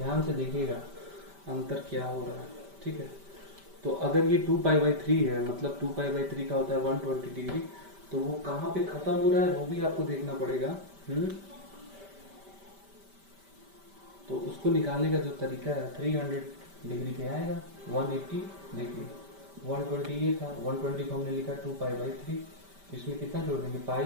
से देखिएगा अंतर क्या हो रहा है। ठीक है, तो अगर ये 2π/3 है, मतलब 2π/3 का होता है 120 डिग्री, तो वो कहाँ पे खत्म हो रहा है वो भी आपको देखना पड़ेगा। तो उसको निकालने का जो तरीका है, 300 डिग्री पे आएगा, 180 देखिए 120 ये था, 120 को हमने लिखा 2π/3, तो इसमें कितना जोड़ देंगे, पाई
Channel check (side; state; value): left; late; 5.1 ms